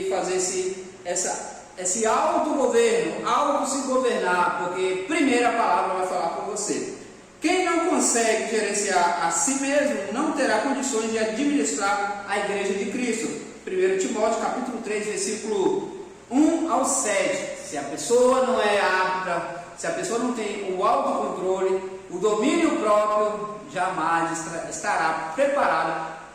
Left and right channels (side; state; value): both; identical; correlation 1.00